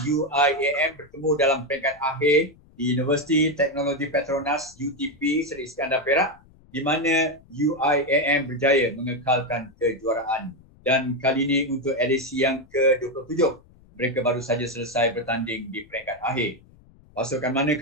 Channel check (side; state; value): left; noise; rumble, 27 dB below the sound